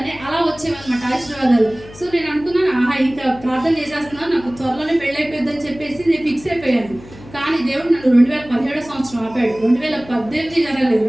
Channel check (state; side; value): noise; left; hum, 19 dB below the sound